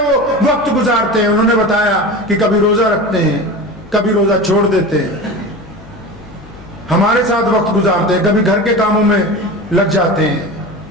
وہ وقت گزارتے ہیں؟ انہوں نے بتایا کہ کبھی روزہ رکھتے ہیں، کبھی روزہ چھوڑ دیتے ہیں، ہمارے ساتھ وقت گزارتے ہیں، کبھی گھر کے کاموں میں لگ جاتے ہیں۔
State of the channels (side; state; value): left; noise; hum, 22 dB below the sound